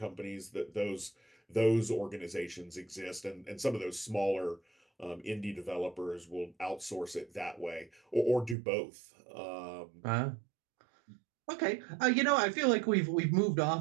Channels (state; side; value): drops out; left; at 8.6 s